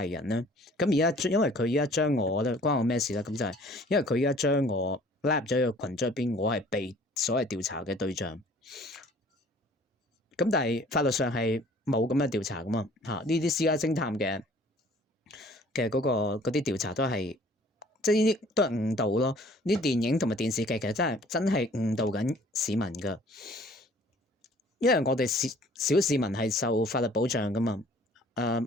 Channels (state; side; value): normal; both; correlation 0.53